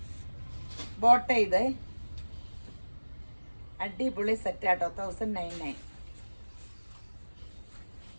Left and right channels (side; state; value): both; inverted; correlation -1.00